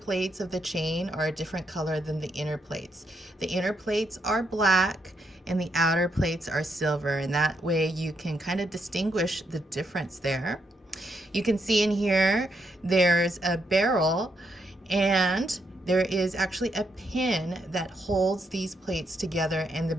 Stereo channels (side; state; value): both; normal; correlation 0.79